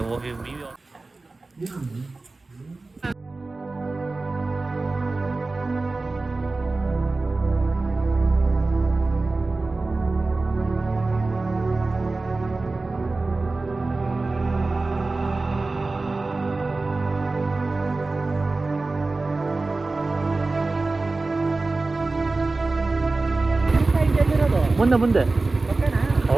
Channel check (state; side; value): quieter; left; 3.4 dB